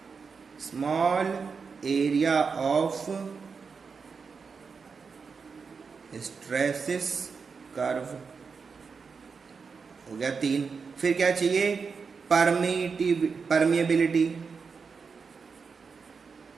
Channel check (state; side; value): quieter; left; 5.3 dB